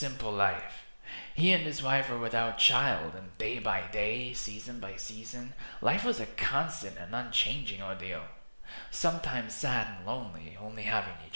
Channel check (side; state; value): both; inverted; correlation -1.00